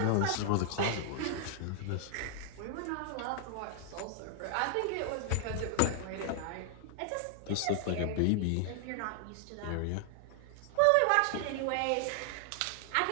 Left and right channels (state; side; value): different; both; correlation 0.00